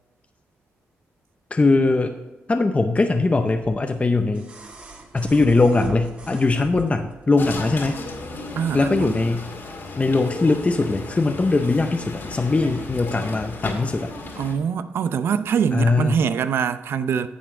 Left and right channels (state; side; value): normal; both; correlation 0.86